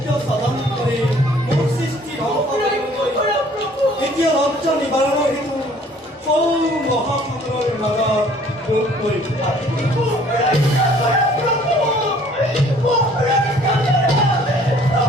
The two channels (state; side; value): normal; both; correlation 0.56